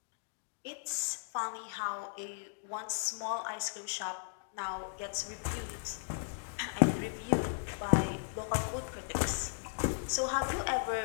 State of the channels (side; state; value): right; silent; digital silence